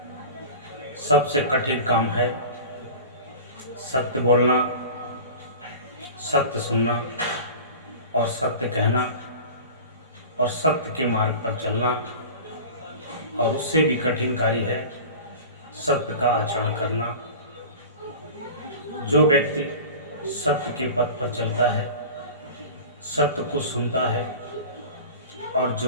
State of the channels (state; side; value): inverted; both; correlation -0.36